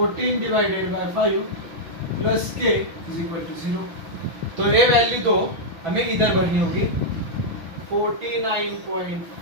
divided by 5 plus k is equal to 0। तो ये वैल्यू तो हमें इधर भरनी होगी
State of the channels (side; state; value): left; late; 6.1 ms